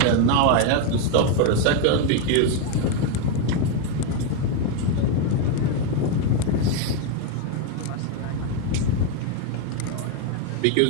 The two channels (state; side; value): different; both; correlation 0.02